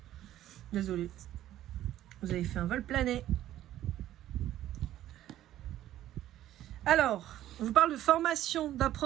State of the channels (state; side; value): quieter; left; 13.0 dB